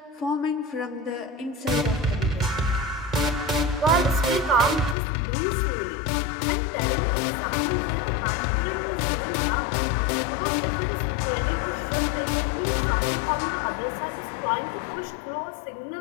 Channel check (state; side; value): drops out; right; at 5.0 s